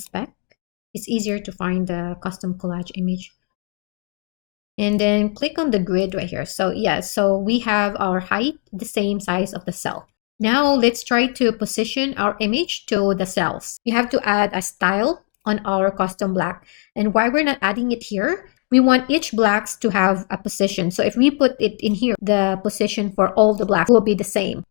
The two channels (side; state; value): right; quieter; 34.6 dB